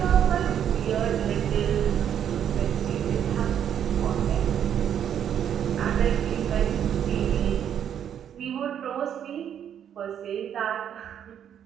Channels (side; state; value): left; quieter; 9.3 dB